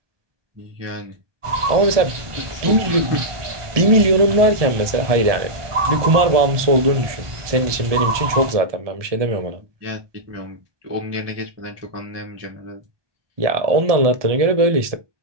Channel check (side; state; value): left; late; 1.2 ms